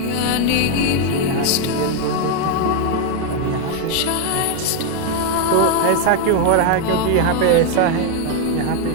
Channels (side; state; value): both; different; correlation 0.01